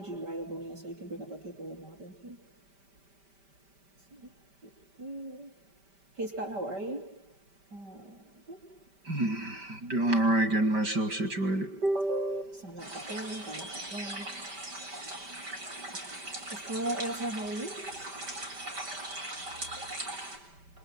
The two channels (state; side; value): late; left; 5.1 ms